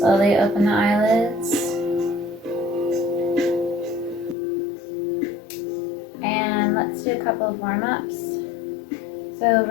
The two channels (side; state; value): right; drops out; at 4.4 s